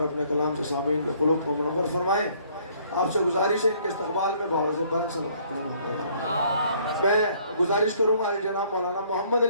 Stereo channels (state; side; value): inverted; both; correlation -0.62